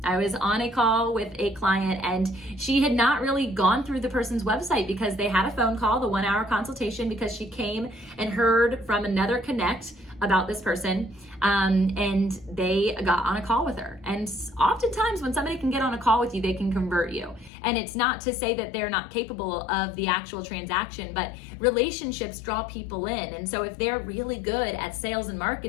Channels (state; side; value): drops out; right; at 17.5 s